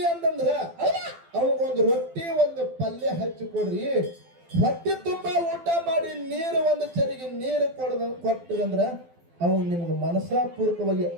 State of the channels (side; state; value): left; late; 12 ms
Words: ಅಂತಂದ್ರ ಅವಂಗೊಂದು ರೊಟ್ಟಿ ಒಂದು ಪಲ್ಯ ಹಚ್ಚಿ ಕೊಡ್ರಿ, ಹೊಟ್ಟೆ ತುಂಬಾ ಊಟ ಮಾಡಿ ನೀರು ಒಂದು ಚರಿಗೆ ನೀರು ಕೊಟ್ಟಂದ್ರ ಅವನು ನಿಮ್ಗೆ ಮನಸಾಪೂರ್ವಕವಾಗಿ